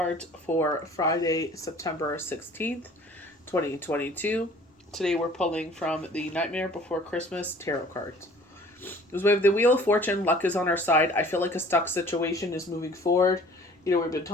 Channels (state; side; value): normal; both; correlation 0.50